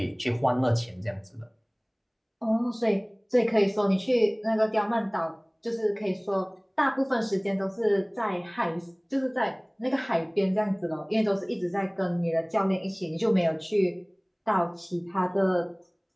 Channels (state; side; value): identical; both; correlation 1.00